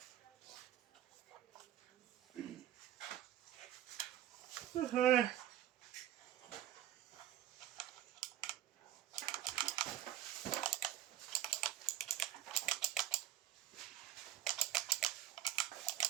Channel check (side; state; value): left; quieter; 12.3 dB